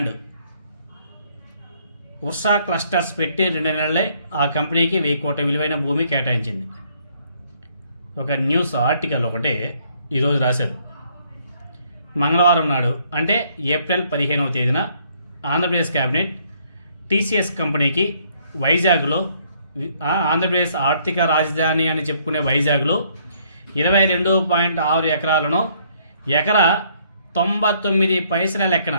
Ursa clusters పెట్టి 2 నెలలే ఆ కంపెనీకి 1000 కోట్ల విలువైన భూమి కేటాయించింది. ఒక న్యూస్ ఆర్టికల్ ఒకటి ఈరోజు రాశారు. మంగళవారం నాడు అంటే ఏప్రిల్ 15వ తేదీన ఆంధ్రప్రదేశ్ క్యాబినెట్ టీసీఎస్ కంపెనీకి వైజాగ్లో, ఆంధ్రప్రదేశ్ ఆర్థిక రాజధాని అని చెప్పుకునే వైజాగ్లో 22.6 ఎకరాలను ఎకరా 99 పైసల లెక్కన,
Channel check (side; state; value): both; inverted; correlation -0.66